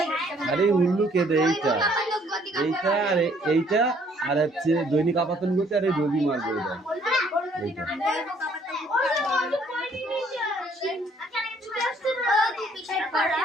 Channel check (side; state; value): both; normal; correlation 0.63